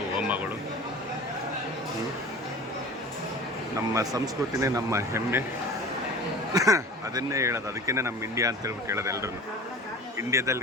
ಹೋಮಗಳು. ನಮ್ಮ ಸಂಸ್ಕೃತಿನೇ ನಮ್ಮ ಹೆಮ್ಮೆ. ಅದನ್ನೇ ಹೇಳೋದು, ಅದಕ್ಕೇ ನಮ್ಮ ಇಂಡಿಯಾ ಅಂತ ಹೇಳ್ಬಿಟ್ಟು ಹೇಳೋದು ಎಲ್ಲರೂ.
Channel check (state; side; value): normal; both; correlation 0.39